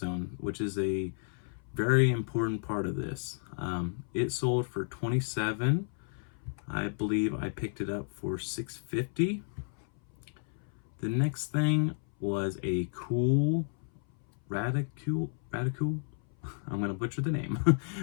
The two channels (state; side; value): silent; right; 56 dB below the other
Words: which is a very important part of this. It sold for $27. I believe I picked it up for $6.50. The next thing was a cool Radicule. I'm gonna butcher the name,